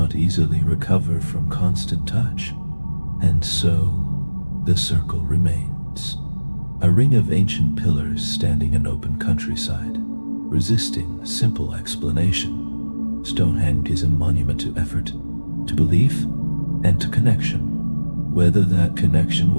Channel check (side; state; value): both; inverted; correlation -1.00